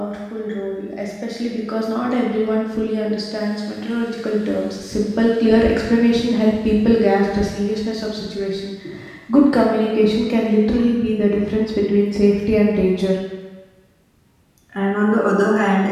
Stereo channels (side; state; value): both; identical; correlation 1.00